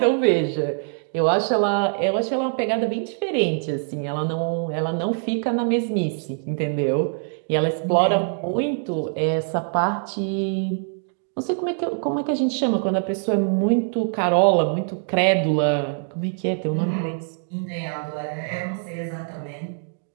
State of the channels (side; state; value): left; silent; 63 dB below the other